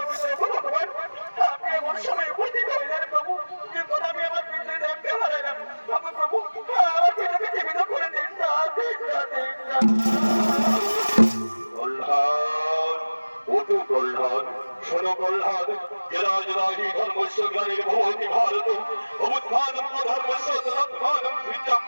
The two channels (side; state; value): both; inverted; correlation -1.00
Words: আপনি এমন সময় উপস্থিত হইলেন প্রভু, যখন আমি আমার পিতৃদেবকে হারাইলাম। প্রভু, আমার পিতাকে জীবিত করে দিন না, দিন না, দিন না। প্রহ্লাদ, ওটু প্রহ্লাদ, শোনো প্রহ্লাদ, জরা জরাহি ধর্মস্য গ্লানির ভবতি ভারত, অবুত্থানম অধর্মস্য তদুত্থানম